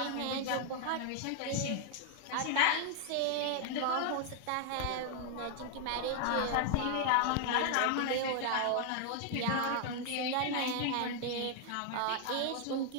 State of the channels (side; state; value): both; different; correlation 0.00